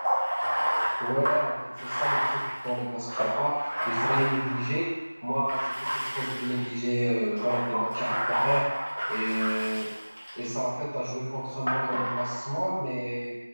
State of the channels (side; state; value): both; inverted; correlation -1.00